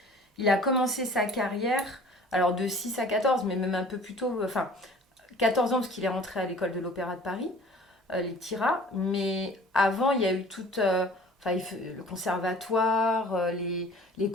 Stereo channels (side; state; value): both; normal; correlation 0.48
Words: a commencé sa carrière, alors de 6 à 14, mais même un peu plus tôt. Enfin, 14 ans parce qu'il est rentré à l'école de l'Opéra de Paris, les TIRA. Mais avant, il y a eu toute. Enfin, le conservatoire, les